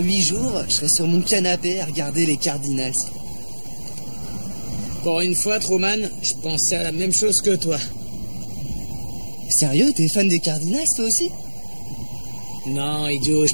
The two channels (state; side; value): inverted; both; correlation -1.00